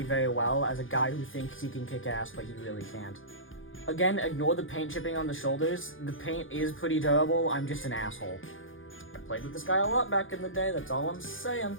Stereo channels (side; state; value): right; late; 0.58 ms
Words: very well as a guy who thinks he can kick ass, but he really can't. Again, ignore the paint chipping on the shoulders. The paint is pretty durable. I'm just an asshole. I played with this guy a lot back in the day, that's all I'm saying.